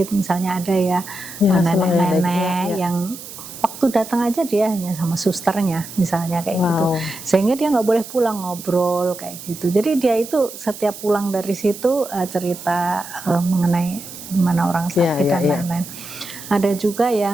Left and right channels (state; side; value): noise; right; hiss, 13 dB below the sound